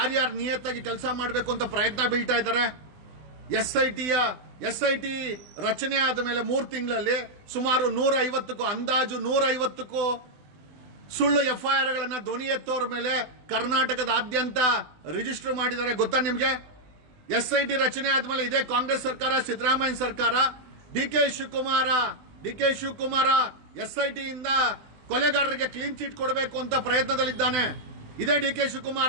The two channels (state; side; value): late; left; 20 ms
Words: ನಿಯತ್ತಾಗಿ ಕೆಲಸ ಮಾಡಬೇಕು ಅಂತ ಪ್ರಯತ್ನ ಬೀಳ್ತಾ ಇದ್ದಾರೆ. SIT ರಚನೆ ಆದ ಮೇಲೆ 3 ತಿಂಗಳಲ್ಲಿ ಸುಮಾರು 150ಕ್ಕೂ ಅಂದಾಜು 150ಕ್ಕೂ ಸುಳ್ಳು FIRಗಳನ್ನ ಧ್ವನಿ ಎತ್ತೋರ ಮೇಲೆ ಕರ್ನಾಟಕದಾದ್ಯಂತ ರಿಜಿಸ್ಟರ್ ಮಾಡಿದ್ದಾರೆ. ಗೊತ್ತಾ ನಿಮ್ಗೆ? SIT ರಚನೆ ಆದ್ಮೇಲೆ ಇದೇ ಕಾಂಗ್ರೆಸ್ ಸರ್ಕಾರ, ಸಿದ್ದರಾಮಯ್ಯ ಸರ್ಕಾರ, DK Shivakumar D K Shivakumar SIT ಇಂದ ಕೊಲೆಗಾರರಿಗೆ ಕ್ಲೀನ್ ಚಿಟ್ ಕೊಡಬೇಕು ಅಂತ ಪ್ರಯತ್ನದಲ್ಲಿದ್ದಾನೆ. ಇದೇ ಡಿ ಕೆ